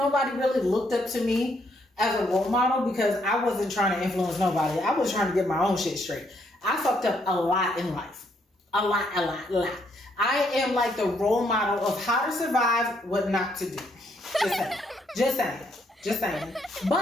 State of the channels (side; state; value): both; normal; correlation 0.72